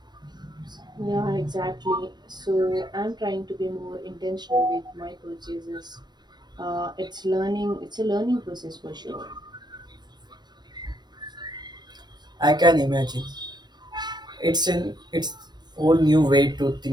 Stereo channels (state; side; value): late; left; 0.21 ms